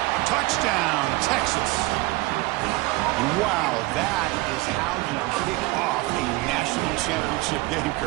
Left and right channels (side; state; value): left; quieter; 21.4 dB